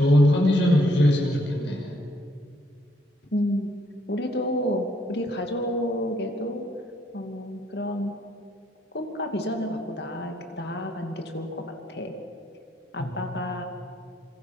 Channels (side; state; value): both; normal; correlation 0.70